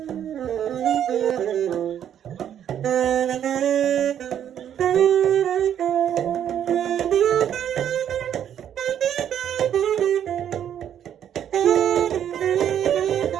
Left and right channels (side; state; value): left; quieter; 9.8 dB